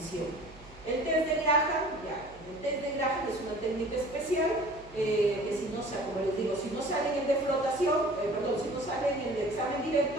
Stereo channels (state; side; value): noise; right; hum, 21 dB below the sound